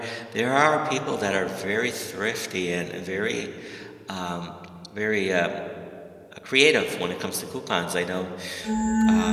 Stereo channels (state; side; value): identical; both; correlation 1.00